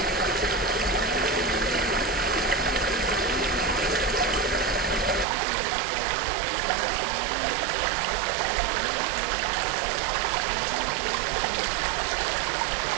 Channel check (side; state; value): left; drops out; at 5.2 s